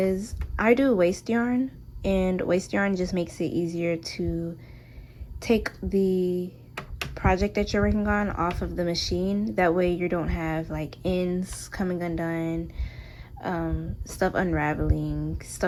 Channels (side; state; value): both; identical; correlation 1.00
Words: I do waste yarn, and waste yarn just makes it easier to take the project that you're working on off of the machine. That way you don't have like ends coming undone, stuff unraveling,